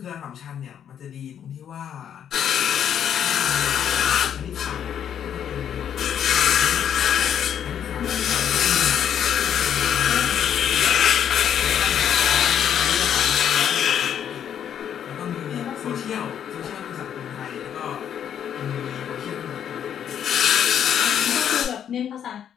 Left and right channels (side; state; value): right; quieter; 9.1 dB